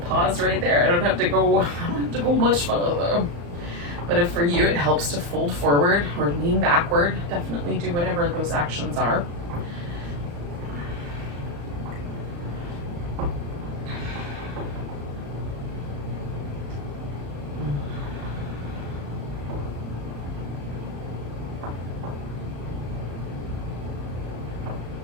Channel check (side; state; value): left; late; 35 ms